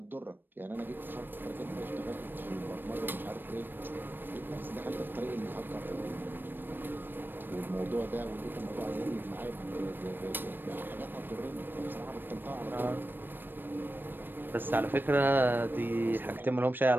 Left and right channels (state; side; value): late; left; 0.094 ms